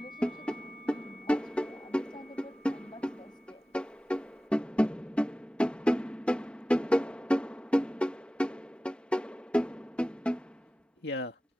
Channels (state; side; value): normal; both; correlation 0.96